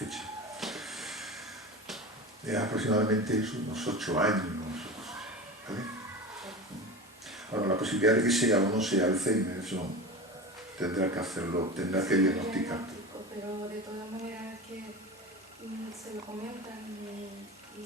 Es aproximadamente unos 8 años. ¿Vale? Ahora, la posibilidad de que sea o no sea Alzheimer, eso tendrá que hacerlo, tendrá que diagnosticar. Pero de todas maneras es que se lo comentan y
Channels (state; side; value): normal; both; correlation 0.29